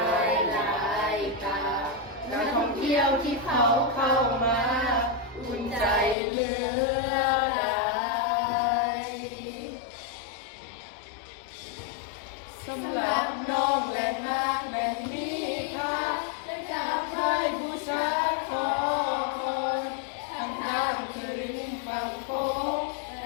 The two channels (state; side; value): drops out; right; at 6.2 s